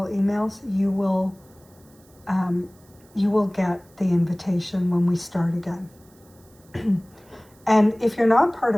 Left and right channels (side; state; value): right; noise; hiss, 30 dB below the sound